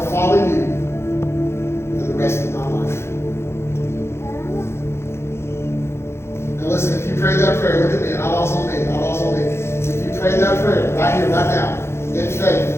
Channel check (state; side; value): late; right; 0.12 ms